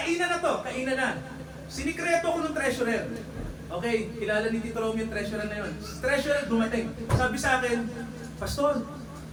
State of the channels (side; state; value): both; identical; correlation 1.00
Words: na. Sinikreto ko ng treasurer. Okay, kilala ni Tito Romeo yung treasurer na yun. Treasurer dumating. Sabi sa akin, Pastor,